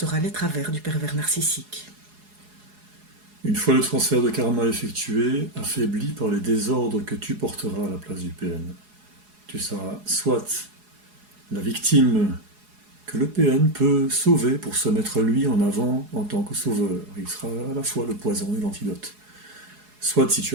les travers du pervers narcissique. Une fois le transfert de karma effectué, affaibli par les désordres que tu porteras à la place du PN, tu seras soit la victime que le PN peut sauver pour se mettre lui en avant en tant que sauveur. Il sera à la fois le poison et l'antidote. Soit, si tu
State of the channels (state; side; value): late; left; 4.8 ms